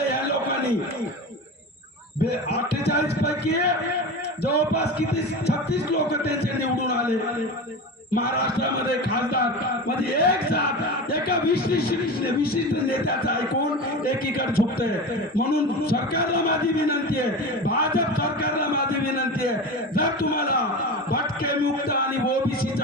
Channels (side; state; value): both; normal; correlation 0.27